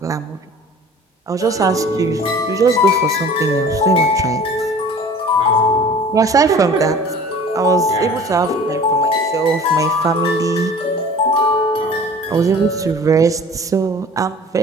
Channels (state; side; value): normal; both; correlation 0.45